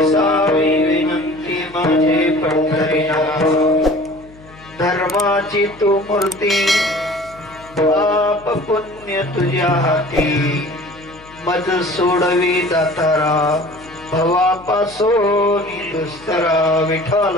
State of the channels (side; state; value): left; noise; hum, 23 dB below the sound